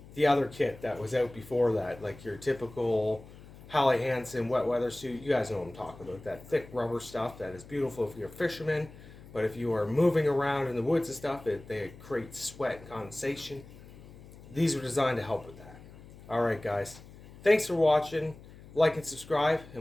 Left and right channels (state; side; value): noise; left; hum, 19 dB below the sound